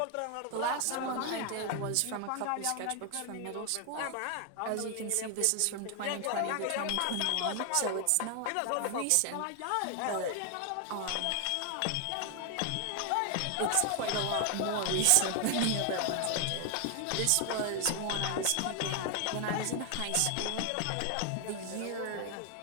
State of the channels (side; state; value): both; different; correlation 0.00